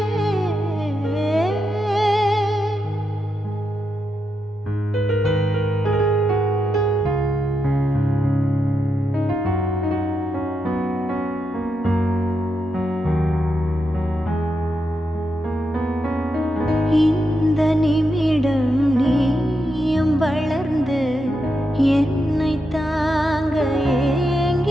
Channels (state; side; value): normal; both; correlation 0.84